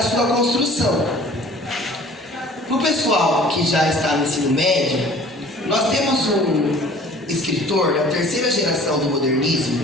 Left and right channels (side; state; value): both; normal; correlation 0.49